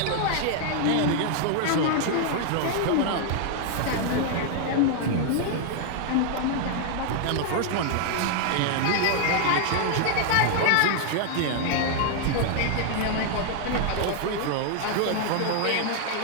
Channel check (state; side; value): different; both; correlation 0.00